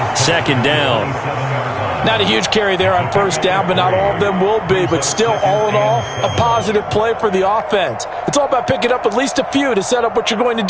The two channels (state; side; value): identical; both; correlation 1.00